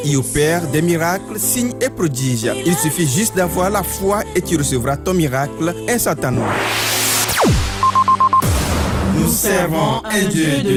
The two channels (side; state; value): both; identical; correlation 1.00